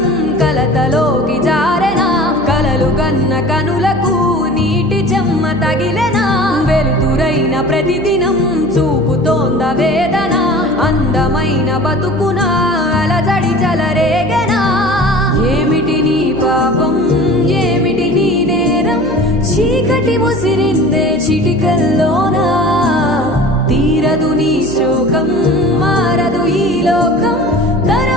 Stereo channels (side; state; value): right; noise; hum, 14 dB below the sound